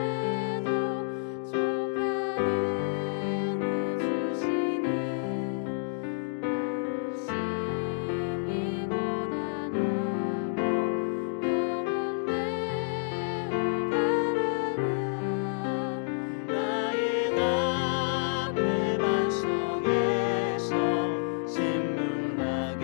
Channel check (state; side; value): silent; right; digital silence